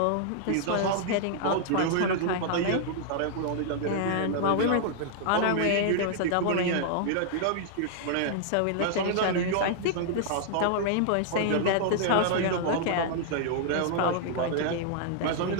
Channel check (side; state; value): both; different; correlation -0.01